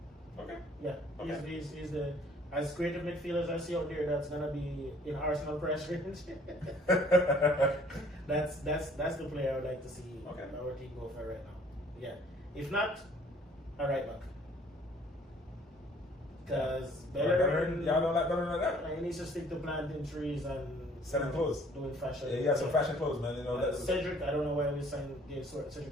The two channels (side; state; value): both; normal; correlation 0.57